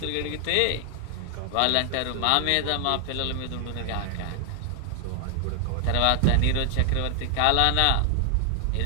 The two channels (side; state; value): both; different; correlation 0.00